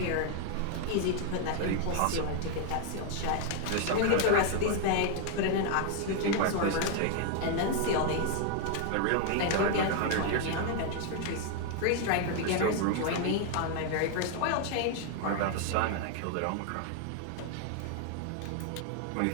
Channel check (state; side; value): different; both; correlation 0.00